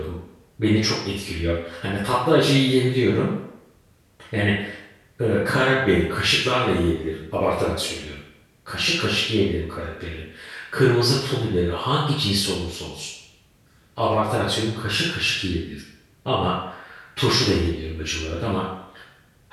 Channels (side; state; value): both; identical; correlation 1.00